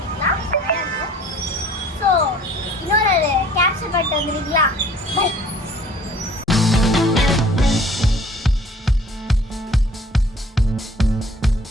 ஸோ இன்னொரு கேப்சர் பண்ணிட்டு வந்துடுறீங்களா? பை.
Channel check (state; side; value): normal; both; correlation 0.52